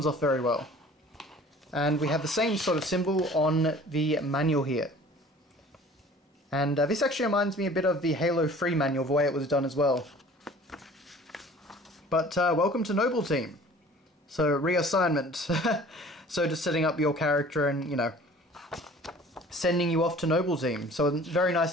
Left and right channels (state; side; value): normal; both; correlation 0.47